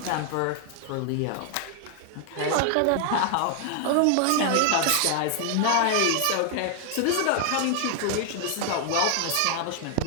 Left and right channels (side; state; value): both; different; correlation 0.00